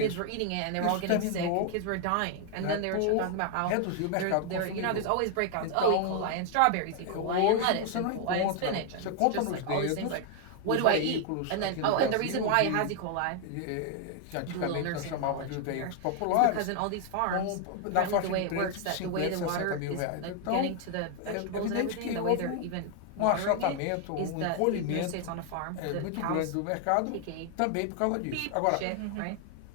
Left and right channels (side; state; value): both; different; correlation 0.00